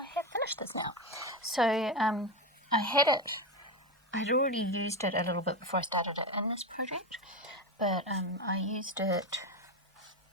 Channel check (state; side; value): normal; both; correlation 0.15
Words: have finished this now. So I had it, I'd already used it a little bit before I started it in this project, but I used it,